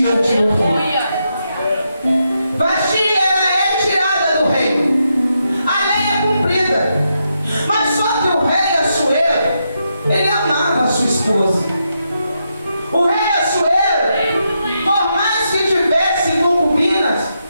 diante do rei. Vasti, ela é tirada do reino. A lei é cumprida. Mas só que o rei Assuero, ele amava a sua esposa. O rei Assuero, por mais que tivesse concubinas,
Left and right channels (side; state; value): both; inverted; correlation -0.83